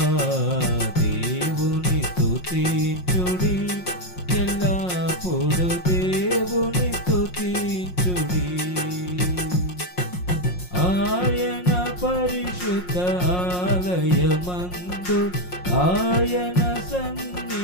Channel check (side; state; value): right; late; 5.6 ms